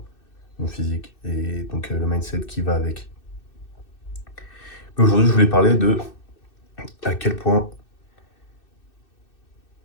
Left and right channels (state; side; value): late; right; 2.6 ms